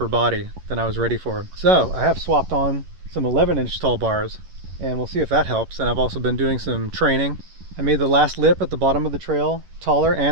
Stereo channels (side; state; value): left; late; 11 ms